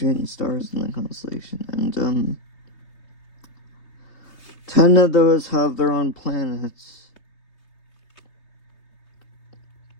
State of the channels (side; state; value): right; late; 3.3 ms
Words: stars in the constellation, and 10 of those have their own planets.